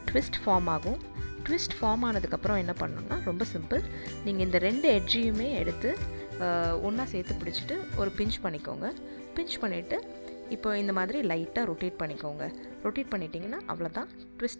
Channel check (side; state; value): both; inverted; correlation -1.00